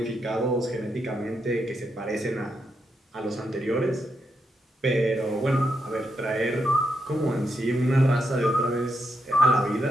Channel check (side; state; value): both; normal; correlation 0.81